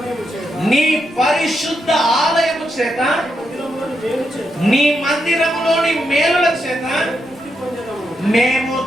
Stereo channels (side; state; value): both; normal; correlation 0.83